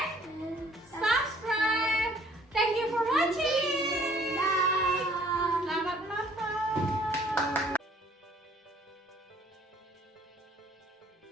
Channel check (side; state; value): both; normal; correlation 0.58